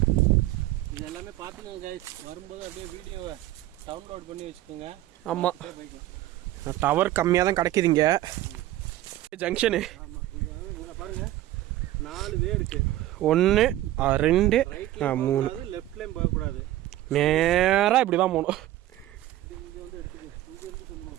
இது எல்லாமே பார்த்துக்கோங்க கைஸ். வரும்போது அப்படியே வீடியோவை டவுன்லோட் பண்ணி வச்சுக்கோங்க. ஆமாம், போய்க்கலாம். டவர் கம்மியாக தான் கிடைக்குதுங்க ஜங்ஷனு. ஆமாம், இங்கே பாருங்கள் 4 வே இருக்குது. 1 2 3. லெஃப்ட்லேயும் போகக்கூடாது, நேராக இப்படி தான் போகணும். இங்கே வந்து எடுத்துக்க, இங்கே இருந்து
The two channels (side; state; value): left; quieter; 14.7 dB